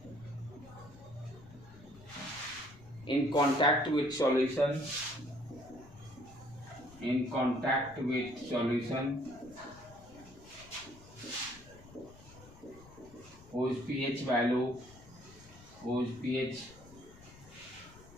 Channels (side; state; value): left; noise; rumble, 20 dB below the sound